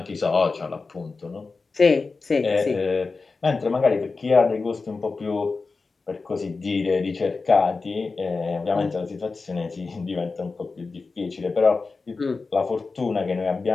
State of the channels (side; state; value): right; quieter; 4.1 dB